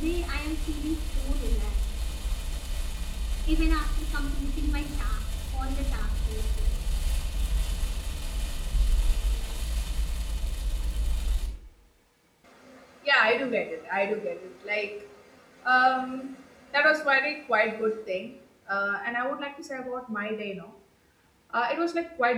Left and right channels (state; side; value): identical; both; correlation 1.00